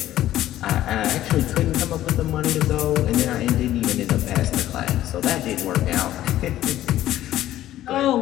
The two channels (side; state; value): right; quieter; 13.5 dB